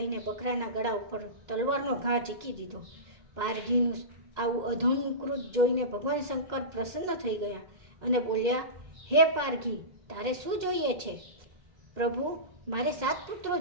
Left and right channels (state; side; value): late; left; 2.0 ms